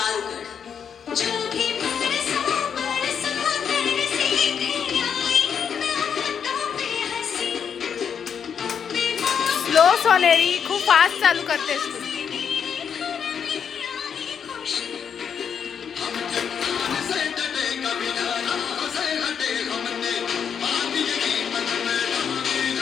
उघड. स्लो सोनेरी, खूप फास्ट चालू करतेस तू. से डटे कभी डरा से हटे हमने,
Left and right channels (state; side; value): quieter; right; 7.4 dB